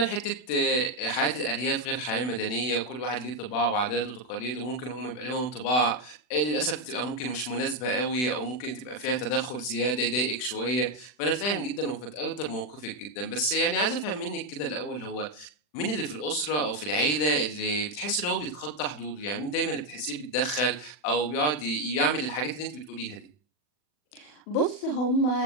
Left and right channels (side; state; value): right; late; 40 ms